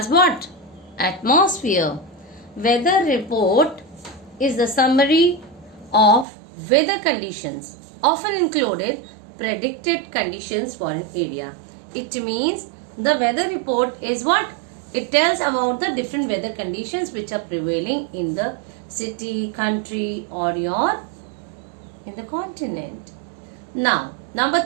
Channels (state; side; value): drops out; left; at 6.2 s